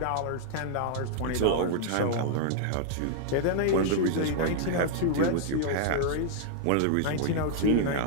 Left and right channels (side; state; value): both; different; correlation -0.01